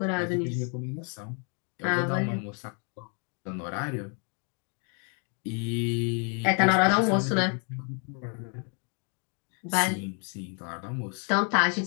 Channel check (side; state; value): right; quieter; 39.7 dB